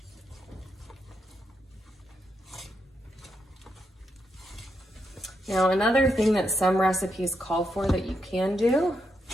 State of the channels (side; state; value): both; normal; correlation 0.81